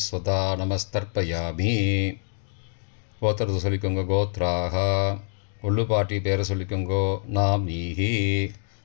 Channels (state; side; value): silent; right; digital silence